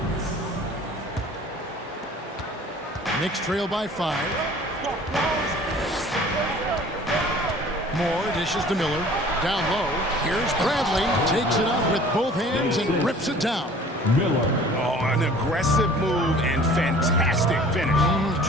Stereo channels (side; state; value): both; normal; correlation 0.48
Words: Knicks trail by 5. Moore dishes to Miller. Down low. Here's Bradley. Takes it up with both hands and rips it down. Miller. Oh, an aggressive move and fantastic finish.